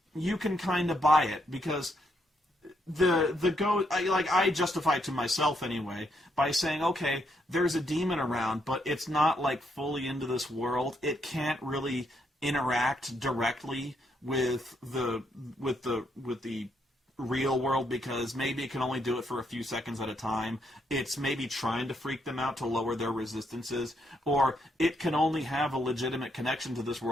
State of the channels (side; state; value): both; normal; correlation 0.76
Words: you can kind of buy it, because I justify it to myself anyway by saying, okay, there's a demon around, but it's not like fully into this world. It can't really interact directly with the real world because maybe it can only do it for a few seconds at a time. It's maybe trying to freak them out to lower their resistances, or it can only have a legitimate connection to this